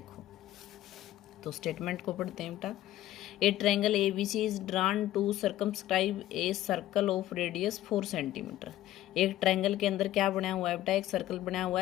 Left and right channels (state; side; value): quieter; right; 14.1 dB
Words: तो स्टेटमेंट को पढ़ते हैं बेटा। A triangle A B C is drawn to circumscribe a circle of radius 4 centimetre. एक ट्रायंगल के अंदर क्या बनाया हुआ है बेटा? एक सर्कल बनाया हुआ